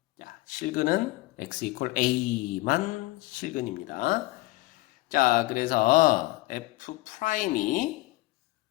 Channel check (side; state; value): right; quieter; 20.0 dB